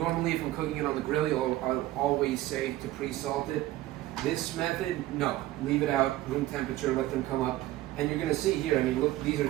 if I'm cooking it on the grill, I'll always say to pre-salt it. This method, no, leave it out, room temperature, let them come up. And you're gonna see here, I mean, look, these are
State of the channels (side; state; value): left; quieter; 15.8 dB